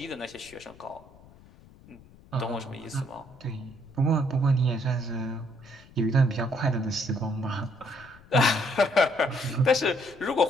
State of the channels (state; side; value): noise; left; rumble, 24 dB below the sound